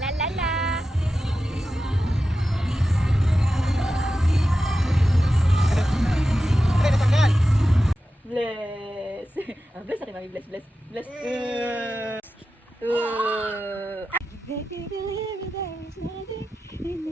La la la. Bless. Bless na kay Mami. Bless, bless, bless. Baby, believe me, there is nothing in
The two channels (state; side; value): normal; both; correlation 0.92